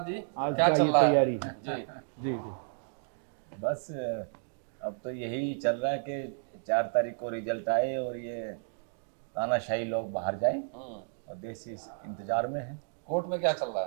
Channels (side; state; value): left; silent; digital silence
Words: जी आज क्या का चल ये रहा है? तैयारी है। जी जी जी। बस अब तो यही चल रहा है कि 4 तारीख को रिजल्ट आए और ये तानाशाही लोग बाहर जाए और देश इस इंतजार में है। कोर्ट में क्या चल रहा